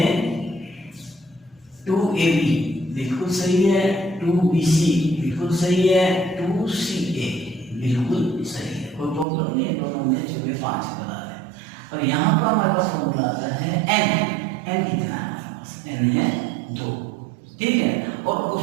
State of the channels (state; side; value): drops out; left; at 9.2 s